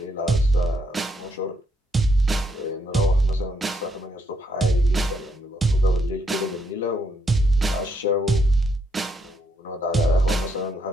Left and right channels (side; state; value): both; normal; correlation 0.76